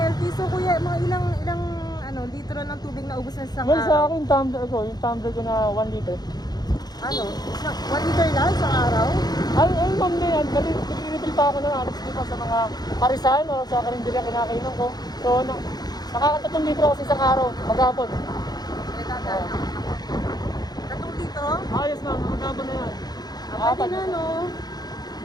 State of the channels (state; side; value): late; right; 0.19 ms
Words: So kuya, mga ilang litro ng tubig na ubos na sa isang Well, sa araw? akin, yung tumbler ko na 1 liter. 1 liter lang sa araw? Ay, ma'am na yan. Nag-refill pa ako ng alas dito sa mga parisan o sa karinderya kinakainan ko. So, nakaka-3 litro ako sa isang araw, maghapon. Tatong dito? Ayos ma'am, maghapon na yan. Pati na, no?